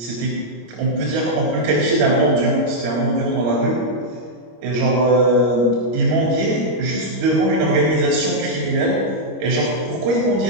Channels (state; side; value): late; left; 25 ms